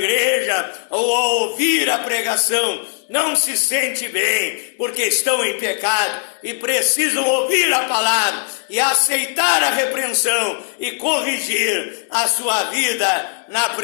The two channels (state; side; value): silent; right; 67 dB below the other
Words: ou ao ouvir a pregação, não se sente bem, porque estão em pecado e precisam ouvir a palavra e aceitar a repreensão e corrigir a sua vida na